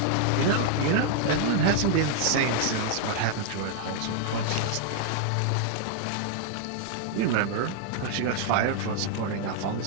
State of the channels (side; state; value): both; different; correlation 0.00